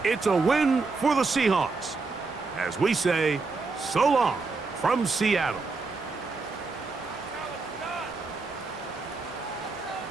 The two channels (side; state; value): left; quieter; 4.1 dB